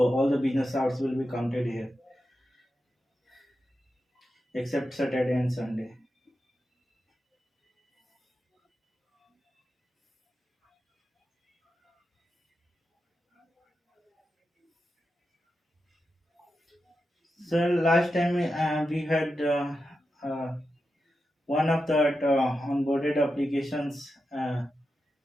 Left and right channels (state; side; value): normal; both; correlation 0.89